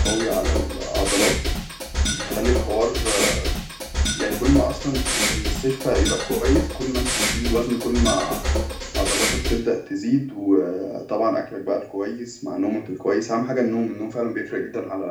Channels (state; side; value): identical; both; correlation 1.00